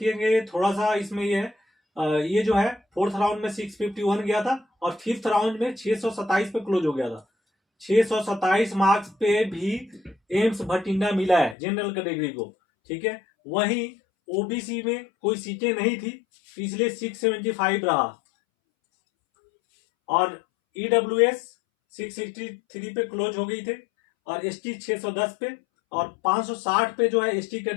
थोड़ा सा इसमें ये है, ये जो है 4th राउंड में 651 गया था, और 5th राउंड में 627 पे क्लोज हो गया था। 627 मार्क्स पे भी एम्स भटिंडा मिला है जनरल कैटेगरी को, ठीक है। वहीं ओबीसी में कोई सीटें नहीं थी, इसलिए 675 रहा, और ईडब्ल्यूएस 663 पे क्लोज हो गई थे, और एसटी 610 पे, और 560 पे जो है एसटी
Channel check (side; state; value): right; drops out; at 11.6 s